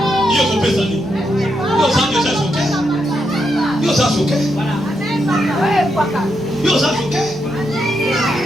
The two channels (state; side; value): normal; both; correlation 0.82